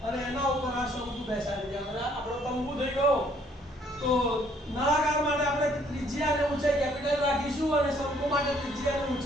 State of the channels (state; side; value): normal; both; correlation 0.64